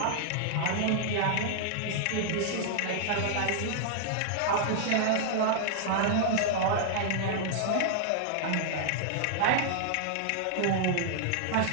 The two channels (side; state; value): both; different; correlation -0.01